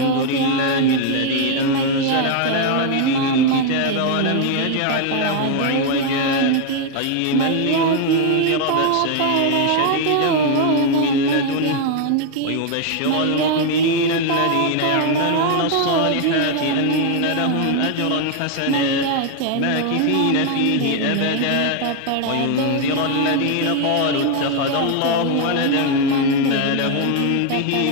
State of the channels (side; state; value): both; different; correlation 0.00